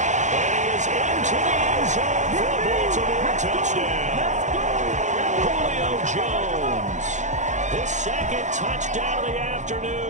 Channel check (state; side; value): late; left; 0.35 ms